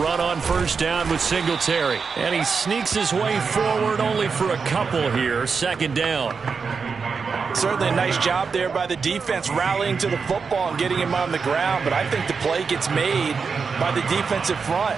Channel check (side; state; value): left; quieter; 5.3 dB